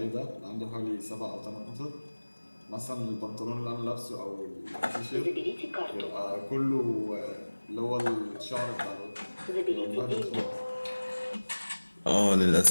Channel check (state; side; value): inverted; both; correlation -1.00